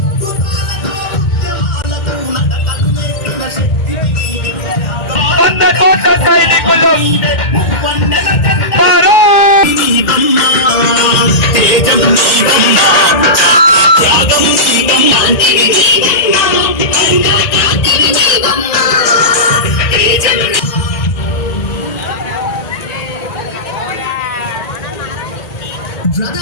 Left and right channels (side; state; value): right; late; 1.9 ms